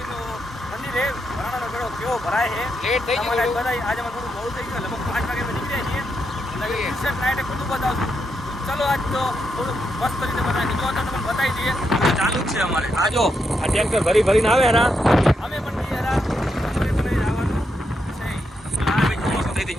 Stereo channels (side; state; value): both; normal; correlation 0.82